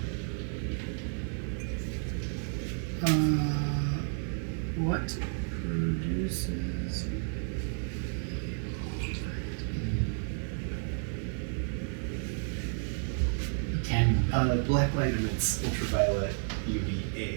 What produces? Can Black light emits ultraviolet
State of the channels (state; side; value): silent; left; 57 dB below the other